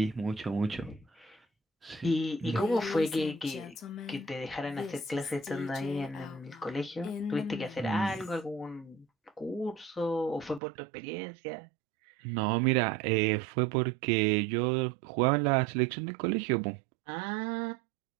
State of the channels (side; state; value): left; drops out; at 10.6 s